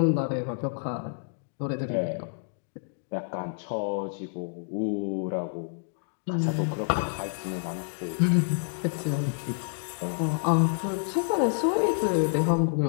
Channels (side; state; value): right; silent; digital silence